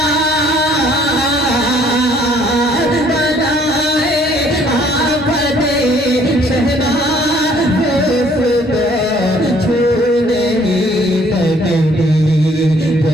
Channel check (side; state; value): both; normal; correlation 0.61